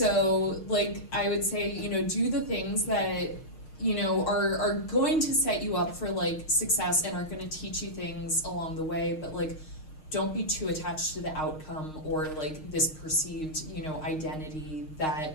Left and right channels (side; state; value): right; late; 6.4 ms